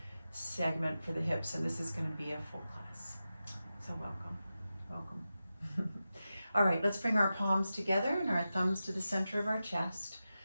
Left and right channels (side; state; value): both; inverted; correlation -0.92